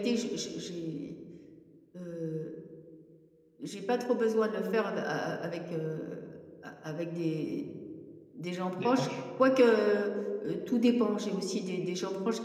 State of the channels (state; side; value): identical; both; correlation 1.00